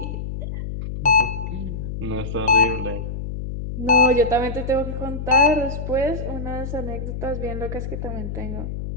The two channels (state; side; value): noise; left; hum, 6 dB below the sound